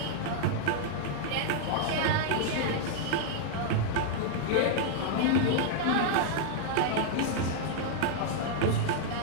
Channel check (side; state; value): both; different; correlation -0.01